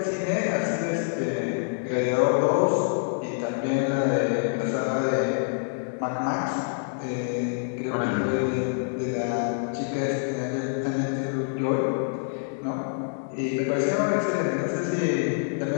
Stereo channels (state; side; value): silent; right; digital silence